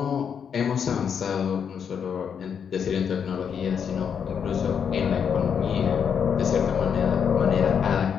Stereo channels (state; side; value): quieter; right; 7.3 dB